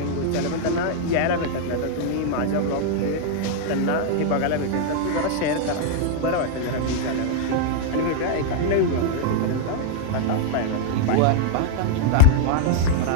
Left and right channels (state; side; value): different; both; correlation 0.00